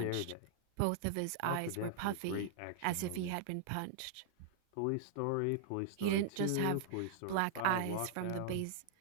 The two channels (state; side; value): different; both; correlation -0.01